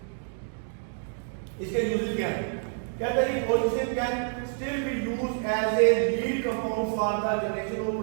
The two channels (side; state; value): left; silent; digital silence